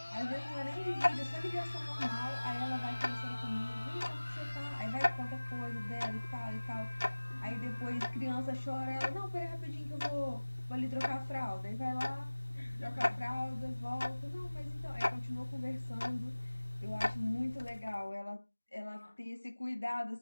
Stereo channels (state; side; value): inverted; both; correlation -1.00